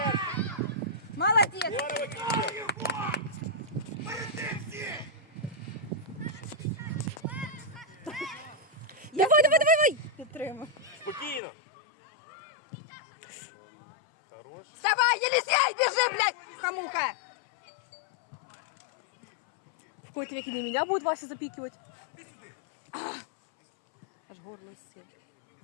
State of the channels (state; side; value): drops out; right; at 11.4 s